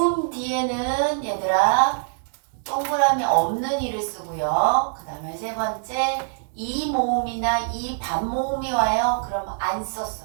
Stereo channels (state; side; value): silent; left; digital silence